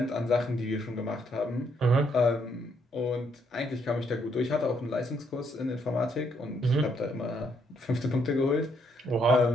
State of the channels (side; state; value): both; normal; correlation 0.72